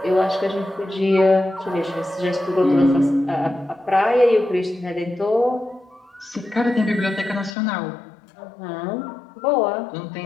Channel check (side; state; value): right; drops out; at 7.6 s